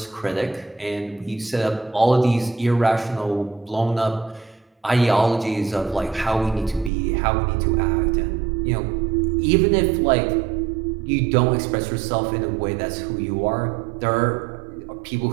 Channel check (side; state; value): left; drops out; at 6.9 s